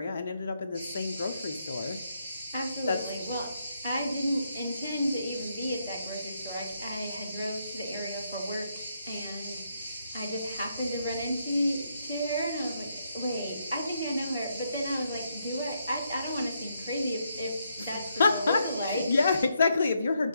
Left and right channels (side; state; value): both; inverted; correlation -0.78